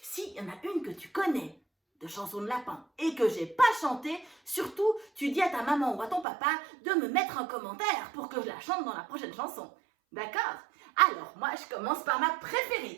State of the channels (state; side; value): drops out; left; at 6.2 s